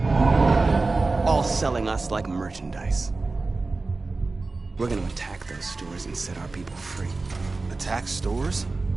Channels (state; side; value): quieter; left; 3.6 dB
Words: all selling us like merchandise. We're gonna attack those stores and set our people free. Attack stores?